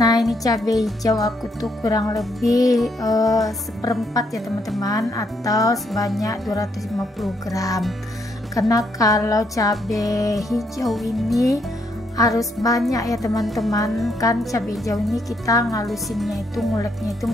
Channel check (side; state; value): both; normal; correlation 0.74